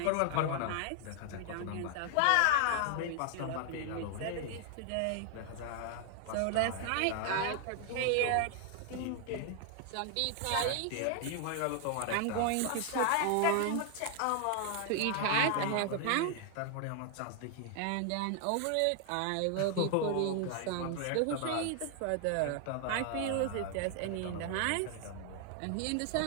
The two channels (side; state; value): both; different; correlation 0.00